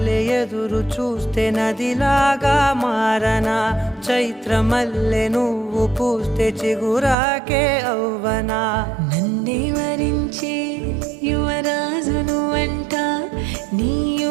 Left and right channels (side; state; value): left; drops out; at 7.2 s